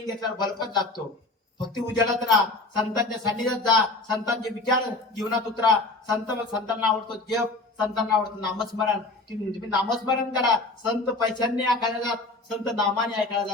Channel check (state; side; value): quieter; right; 3.1 dB